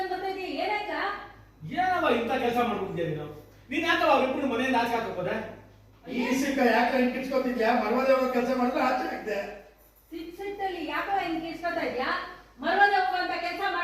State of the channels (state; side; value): identical; both; correlation 1.00